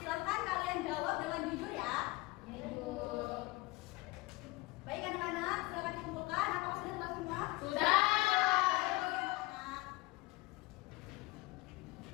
silakan kalian jawab dengan jujur ya. Ibu. Baik anak-anak, silakan dikumpulkan. Apakah sudah selesai semua? Sudah.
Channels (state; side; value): quieter; right; 22.2 dB